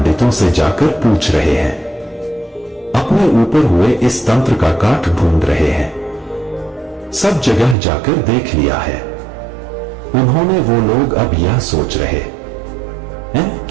से जाकर पूछ रहे हैं, अपने ऊपर हुए इस तंत्र का काट ढूंढ रहे हैं। सब जगह जाकर देख लिया है उन्होंने। वो लोग अब यह सोच रहे हैं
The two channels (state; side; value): drops out; left; at 7.8 s